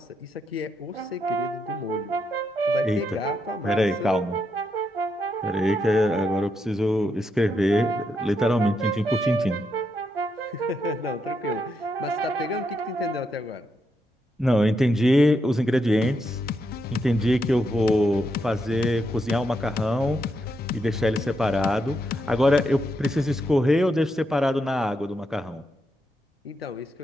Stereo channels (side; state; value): both; normal; correlation 0.81